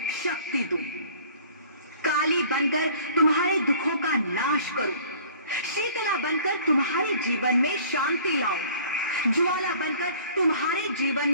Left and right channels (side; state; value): both; inverted; correlation -0.50